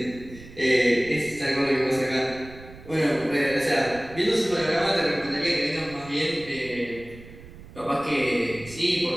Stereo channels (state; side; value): noise; right; rumble, 18 dB below the sound